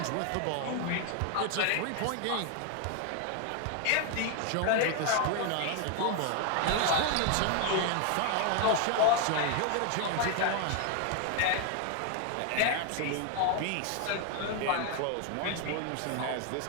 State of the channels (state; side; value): different; both; correlation 0.00